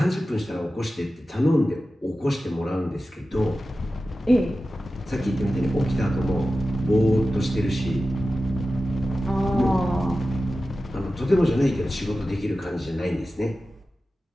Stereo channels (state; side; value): normal; both; correlation 0.94